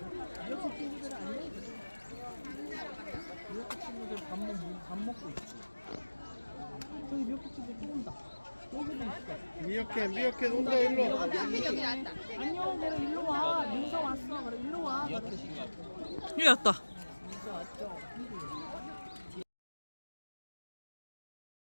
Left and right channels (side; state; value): both; inverted; correlation -1.00